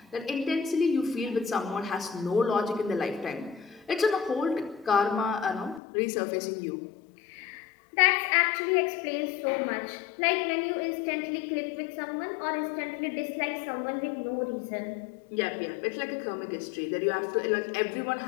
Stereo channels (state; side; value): drops out; right; at 5.8 s